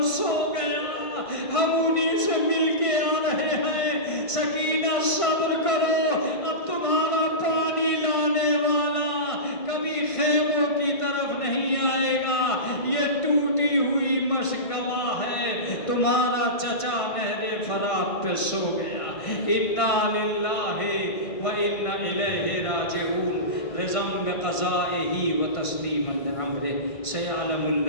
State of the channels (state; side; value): late; right; 1.5 ms